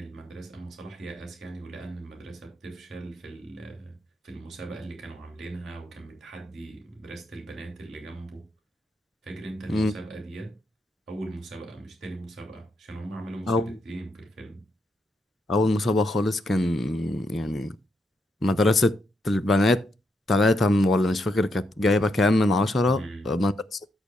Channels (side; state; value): both; normal; correlation 0.79